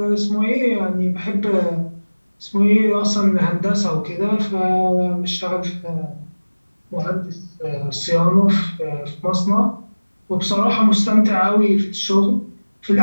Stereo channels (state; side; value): inverted; both; correlation -1.00